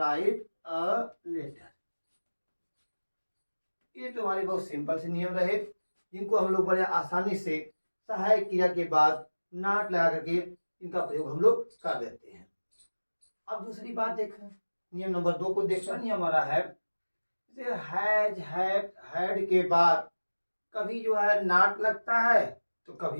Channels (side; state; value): both; inverted; correlation -1.00